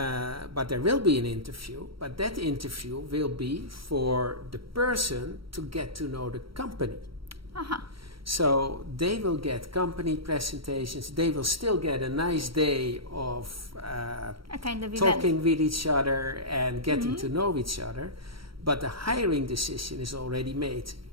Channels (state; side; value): late; left; 0.74 ms